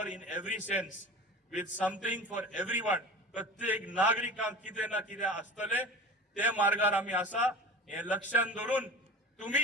in every sense, with something for everyone. प्रत्येक नागरिकांक कितें ना कितें आसतलें. ते मार्गार आमी आसा. हे लक्षांत दवरून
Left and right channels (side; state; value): both; normal; correlation 0.35